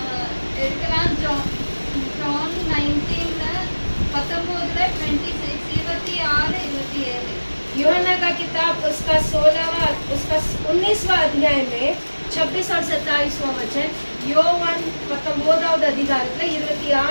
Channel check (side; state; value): both; inverted; correlation -1.00